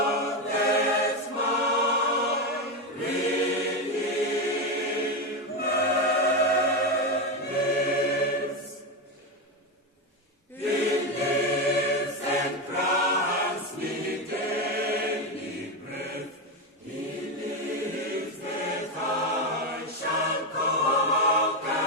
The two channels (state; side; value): normal; both; correlation 0.11